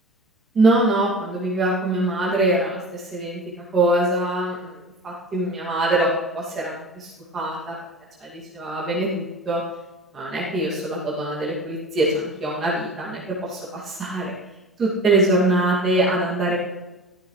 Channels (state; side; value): normal; both; correlation 0.36